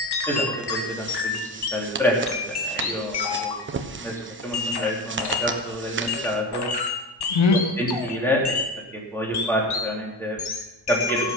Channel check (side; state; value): both; normal; correlation 0.27